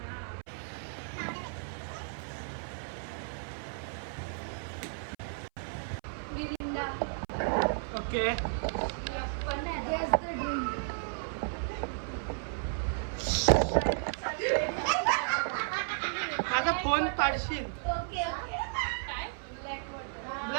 ओके माझा फोन पाडशील.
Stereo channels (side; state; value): left; silent; 55 dB below the other